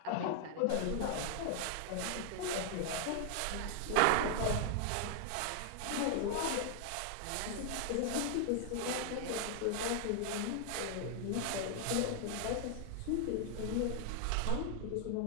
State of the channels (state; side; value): different; both; correlation 0.00